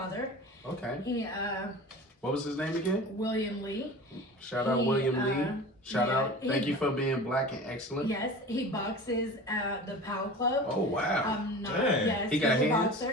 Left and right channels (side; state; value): both; normal; correlation 0.36